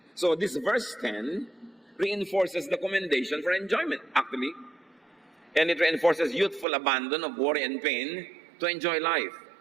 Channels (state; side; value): drops out; left; at 6.7 s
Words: So this verse 10 reinforces the commendation for enjoyment, actually. And it reinforces youthful abandon of worry and pain to enjoy life.